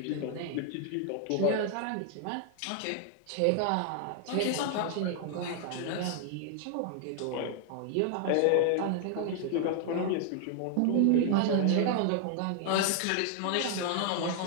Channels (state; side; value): different; both; correlation 0.00